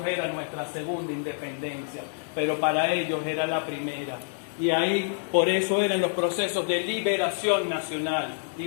era nuestra segunda independencia, pero para ellos era la primera. Y ahí, por eso eran los procesos de liberación nacional.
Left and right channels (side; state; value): right; silent; 60 dB below the other